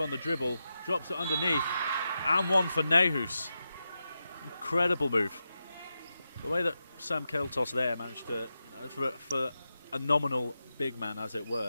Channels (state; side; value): inverted; both; correlation -0.89